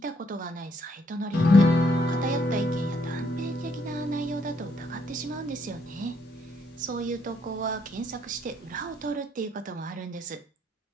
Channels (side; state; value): both; normal; correlation 0.71